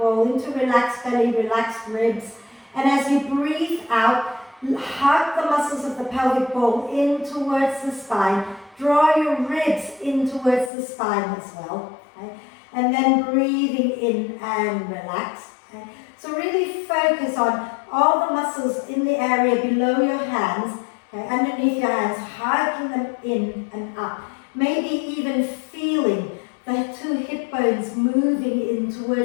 into relaxed belly, relaxed ribs. And as you breathe out, hug the muscles of the pelvic bowl in towards the spine. Draw your ribs in towards the spine as well. Okay? And then breathing in and relax. Okay? So really focus on all the muscles in the area below your hands, okay, underneath your hands, hugging them in and up. Maybe even feeling the two hip bones moving in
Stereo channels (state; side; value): drops out; right; at 10.7 s